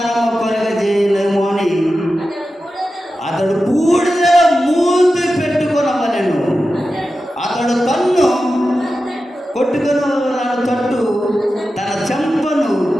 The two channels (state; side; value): normal; both; correlation 0.92